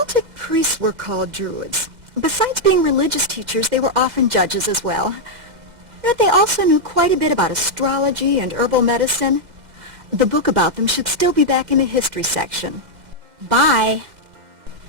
priests were called druids. Besides being religious teachers, they were often judges as well. But they also knew quite a bit about astrology and herbal medicine. The book about them should still be back in the history section. Bye.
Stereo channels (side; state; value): left; late; 2.1 ms